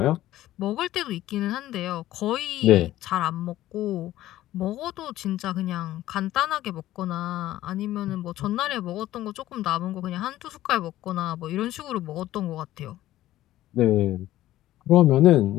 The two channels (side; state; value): right; quieter; 14.6 dB